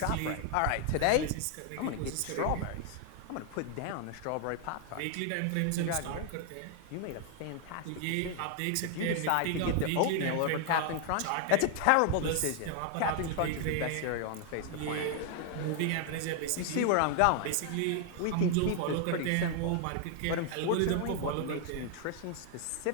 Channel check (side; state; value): both; different; correlation 0.00